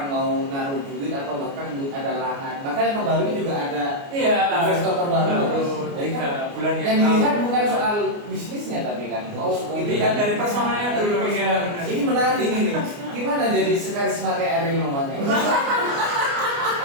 mau naruh duit atau bahkan ada lahan. Bahkan yang terbaru ini juga ada investor terbaru. Jadi kan bulan yang dilihat bukan soal bisnisnya tapi kan dilihat dari personalnya dulu ya. Ini menarik ini. Gimana jadi sekarisma kayak Ariel Noman?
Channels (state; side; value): late; left; 29 ms